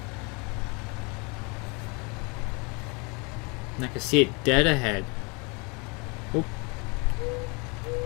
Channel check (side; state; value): right; quieter; 30.8 dB